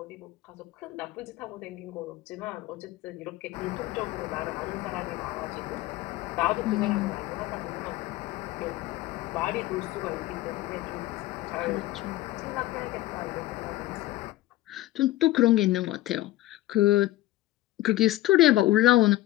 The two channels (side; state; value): right; quieter; 16.1 dB